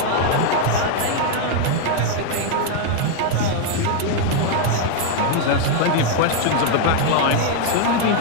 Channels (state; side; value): different; both; correlation 0.00